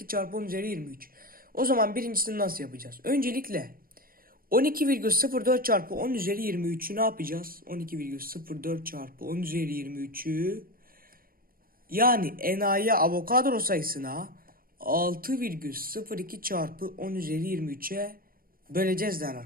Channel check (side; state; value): left; late; 0.42 ms